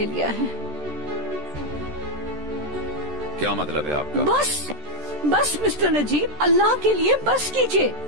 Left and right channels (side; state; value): left; late; 13 ms